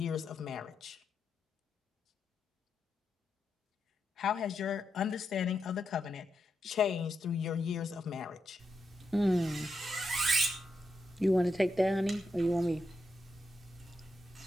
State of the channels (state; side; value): normal; both; correlation 0.85